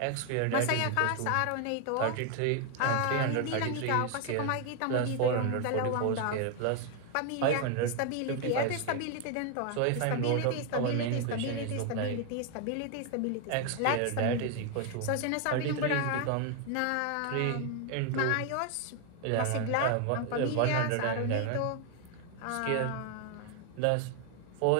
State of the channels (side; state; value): both; different; correlation 0.01